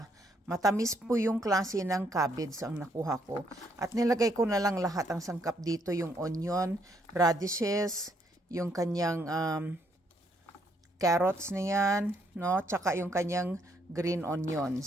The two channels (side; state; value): both; normal; correlation 0.72